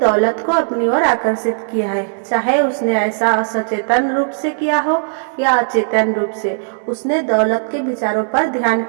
को अपनी ओर आकर्षित किया है। चाहे उसने ऐसा सचेतन रूप से किया हो या अचेतन रूप से, उसने दौलत के विचारों पर ध्यान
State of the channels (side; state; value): left; silent; digital silence